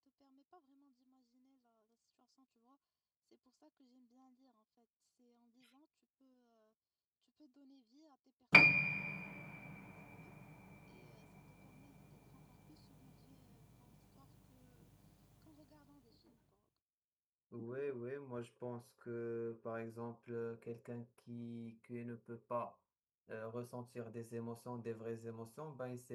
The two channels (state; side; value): identical; both; correlation 1.00